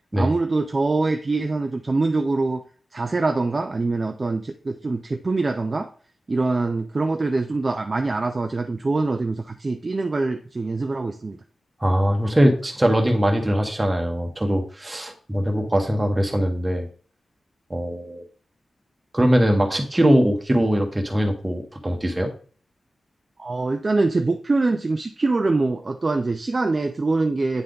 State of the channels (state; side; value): normal; both; correlation 0.97